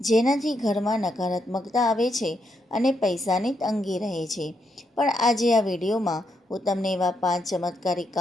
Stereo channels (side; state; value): both; normal; correlation 0.79